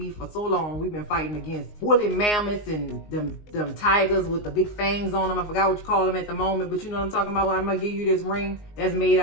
for so long. We've been fighting against woolly mammoths and them tigers with the big fangs on them. I forgot what you call them at the moment, but you know what I'm talking about. I'm gonna give you this ring that's made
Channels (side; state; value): right; late; 19 ms